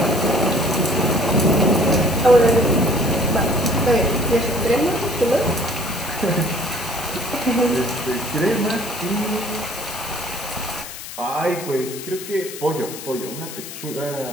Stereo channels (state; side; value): noise; left; hiss, 11 dB below the sound